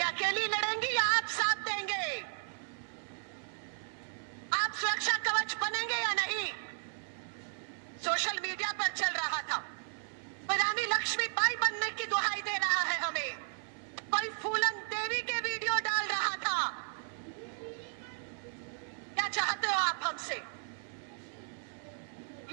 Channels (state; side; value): silent; left; 55 dB below the other